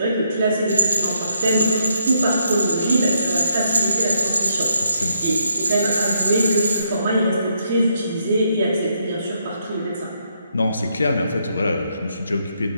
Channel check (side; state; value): both; inverted; correlation -0.75